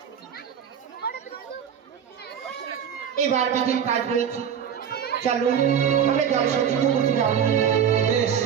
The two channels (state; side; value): quieter; left; 8.2 dB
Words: এবার বিধির কাজ রয়েছে, চলো আমরা জল সঞ্চিত করতে যাবো। বেশ,